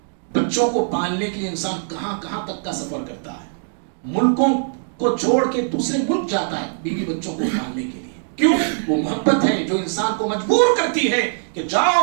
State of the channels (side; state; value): left; silent; digital silence